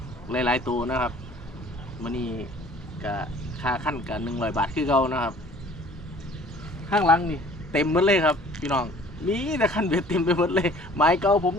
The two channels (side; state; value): both; normal; correlation 0.52